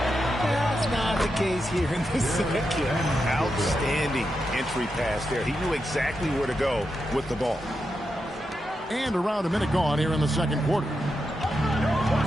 That's not the case here in the second. Outstanding entry pass there. He knew exactly where to go with the ball. And around a minute gone here in the second quarter.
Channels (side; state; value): both; normal; correlation 0.86